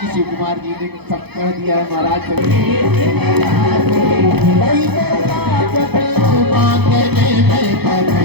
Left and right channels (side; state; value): left; late; 0.98 ms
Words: शिव कुमार जी ने सब कह दिया है महाराज।